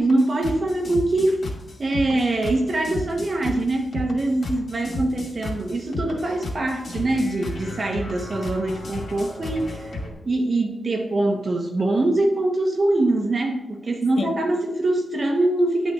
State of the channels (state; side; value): normal; both; correlation 0.90